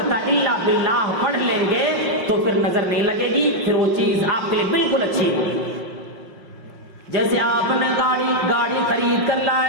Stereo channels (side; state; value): left; late; 5.6 ms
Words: الا باللہ پڑھ لیں گے تو پھر نظر نہیں لگے گی، پھر وہ چیز آپ کے لیے بالکل اچھی ہوگی۔ جیسے آپ نے گاڑی خرید کر